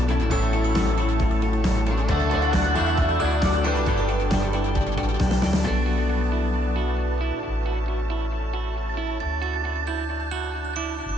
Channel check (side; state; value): both; normal; correlation 0.75